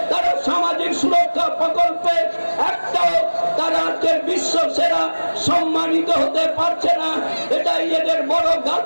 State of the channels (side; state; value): both; inverted; correlation -1.00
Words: তারা সামাজিক সুরক্ষা প্রকল্পে একটাও তারা আজকের বিশ্ব সেরা সম্মানিত হতে পারছে না। এটাই এদের বড়